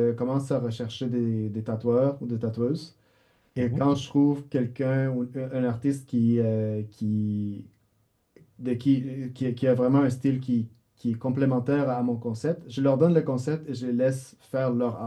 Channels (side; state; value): both; identical; correlation 1.00